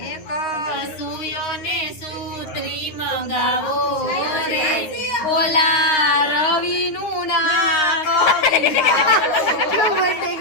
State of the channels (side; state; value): right; late; 9.6 ms